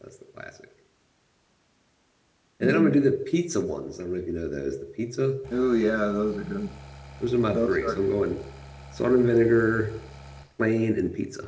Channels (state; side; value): identical; both; correlation 1.00